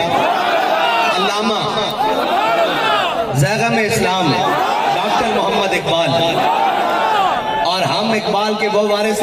علامہ زیغم اسلام ڈاکٹر محمد اقبال، اور ہم اقبال کے وہ وارث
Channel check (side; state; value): both; identical; correlation 1.00